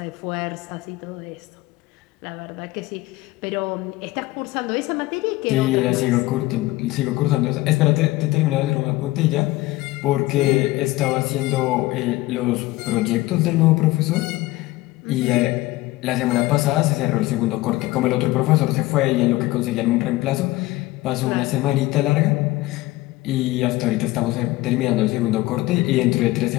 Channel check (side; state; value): right; quieter; 18.8 dB